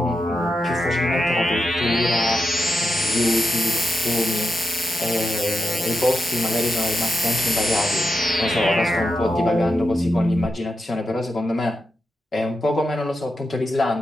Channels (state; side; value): normal; both; correlation 0.88